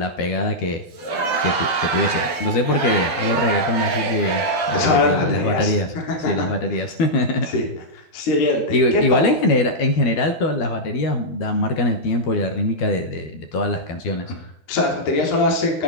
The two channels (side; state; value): right; late; 12 ms